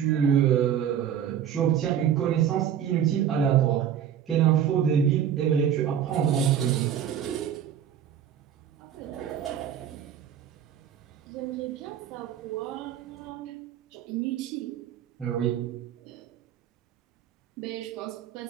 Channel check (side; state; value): left; quieter; 9.2 dB